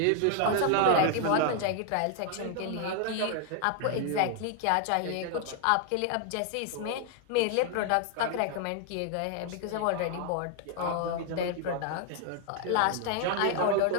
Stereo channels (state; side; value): different; both; correlation 0.00